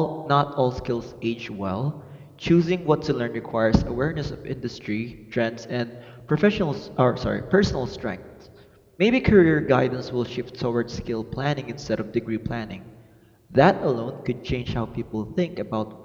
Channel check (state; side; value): identical; both; correlation 1.00